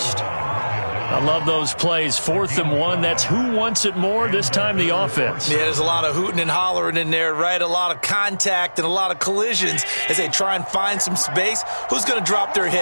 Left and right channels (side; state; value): both; inverted; correlation -1.00